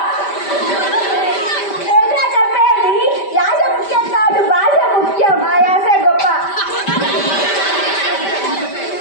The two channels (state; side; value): late; right; 5.1 ms